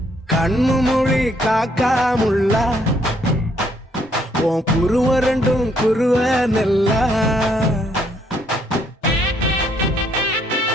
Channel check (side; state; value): both; normal; correlation 0.70